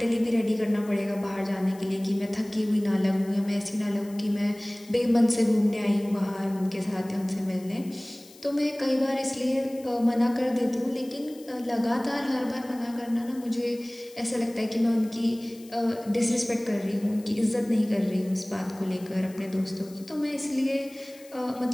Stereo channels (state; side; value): noise; left; hiss, 23 dB below the sound